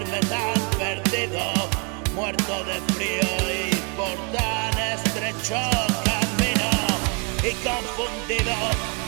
tan perdido, muerto de frío y por tan estrecho camino? Y confundido,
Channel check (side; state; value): left; quieter; 35.7 dB